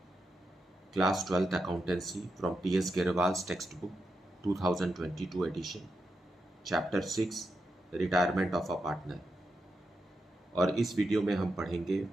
class 12th accountancy from T S Grewal's text book 2022 edition, chapter 6 retirement of a partner. और इस video में हम पढ़ेंगे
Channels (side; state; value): both; normal; correlation 0.86